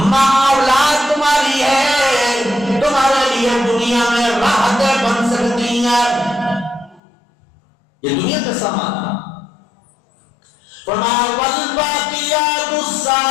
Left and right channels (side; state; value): right; drops out; at 7.0 s